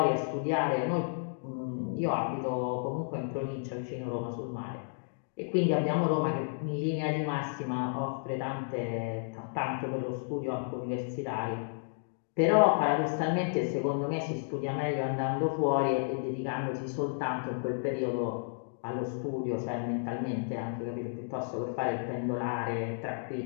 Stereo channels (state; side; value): silent; right; digital silence